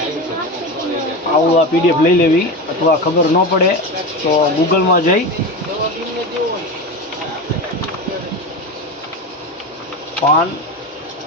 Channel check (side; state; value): both; normal; correlation 0.23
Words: આવું આ PDF લઈ લેવી, અથવા ખબર ન પડે તો ગૂગલમાં જઈ પાન